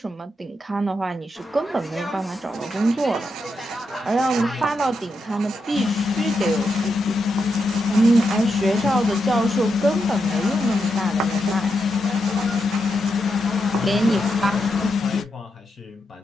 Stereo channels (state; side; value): normal; both; correlation 0.84